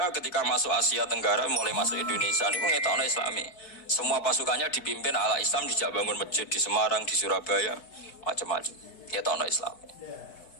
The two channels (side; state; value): right; late; 4.6 ms